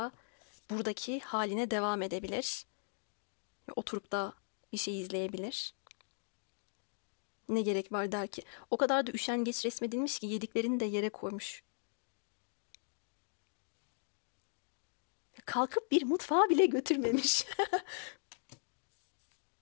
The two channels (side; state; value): right; silent; digital silence